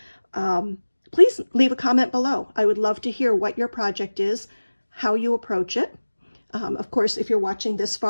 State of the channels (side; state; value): both; inverted; correlation -1.00